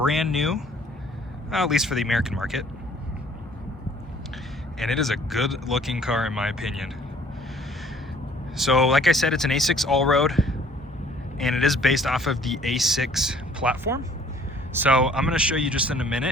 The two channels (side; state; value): both; normal; correlation 0.57